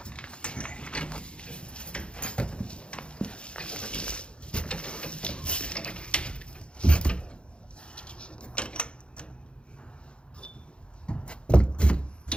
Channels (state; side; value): late; right; 0.056 ms